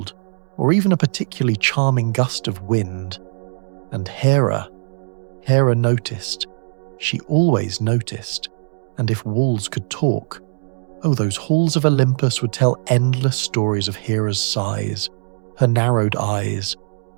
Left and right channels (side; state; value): left; silent; digital silence